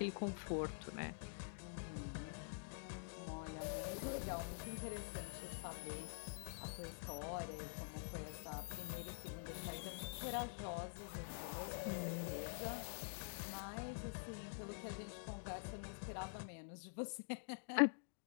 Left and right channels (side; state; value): right; silent; digital silence